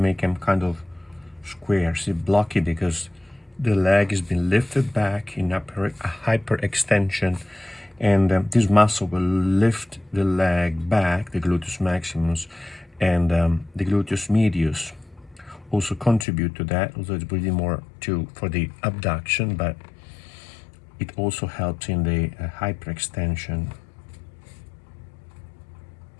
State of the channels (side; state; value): right; drops out; at 16.2 s